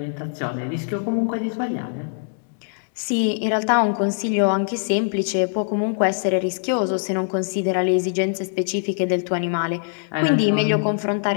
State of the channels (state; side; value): silent; right; digital silence